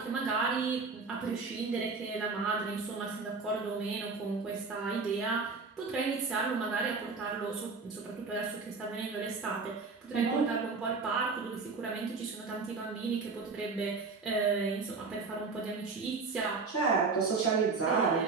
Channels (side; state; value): left; quieter; 4.4 dB